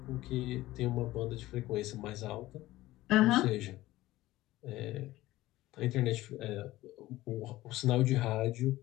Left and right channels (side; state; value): right; quieter; 16.9 dB